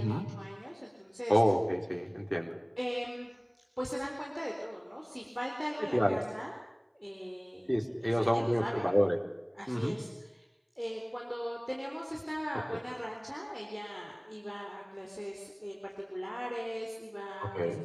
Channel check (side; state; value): both; identical; correlation 1.00